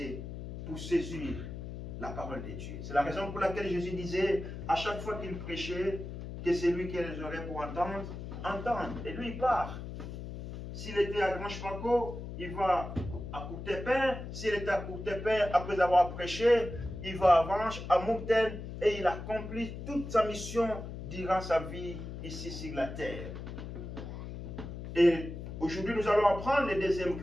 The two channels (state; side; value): noise; left; hum, 9 dB below the sound